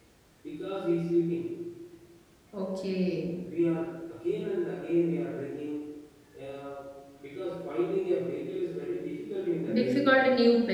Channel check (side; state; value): both; identical; correlation 1.00